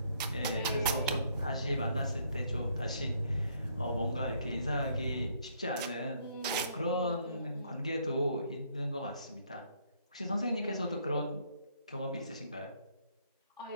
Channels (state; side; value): inverted; both; correlation -0.68